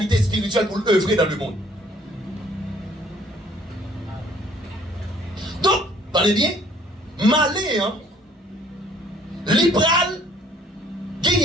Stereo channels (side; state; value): both; normal; correlation 0.59